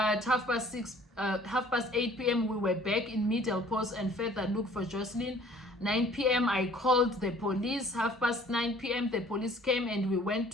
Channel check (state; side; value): normal; both; correlation 0.54